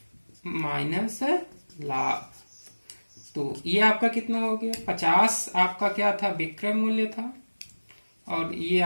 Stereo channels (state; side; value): inverted; both; correlation -1.00